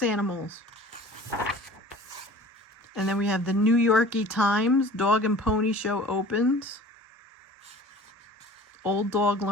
animals. And then we have the New Yorkie Times, Dog and Pony Show opens. Old Dog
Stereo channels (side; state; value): both; normal; correlation 0.44